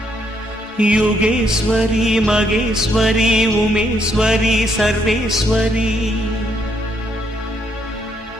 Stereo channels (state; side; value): normal; both; correlation 0.73